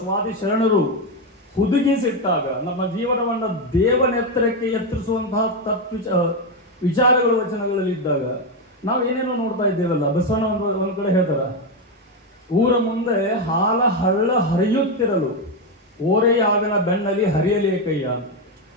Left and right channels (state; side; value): normal; both; correlation 0.08